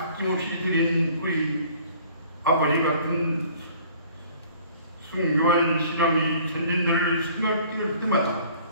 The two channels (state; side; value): inverted; both; correlation -0.53